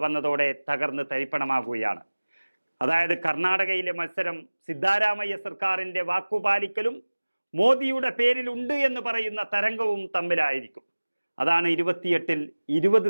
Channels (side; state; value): both; inverted; correlation -1.00